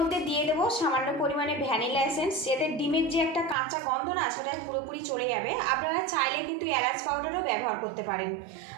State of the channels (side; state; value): left; drops out; at 3.6 s